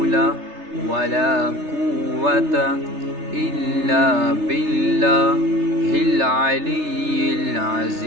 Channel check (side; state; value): left; late; 3.3 ms